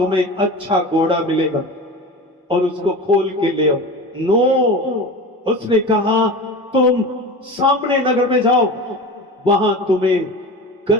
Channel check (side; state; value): both; normal; correlation 0.31